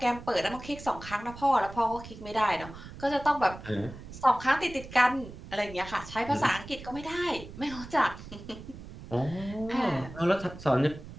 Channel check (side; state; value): right; noise; rumble, 14 dB below the sound